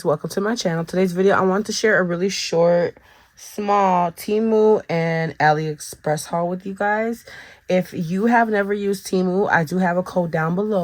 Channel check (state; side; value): identical; both; correlation 1.00